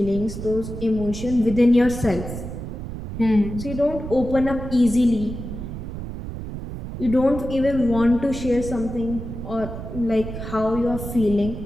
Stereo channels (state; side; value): noise; right; rumble, 8 dB below the sound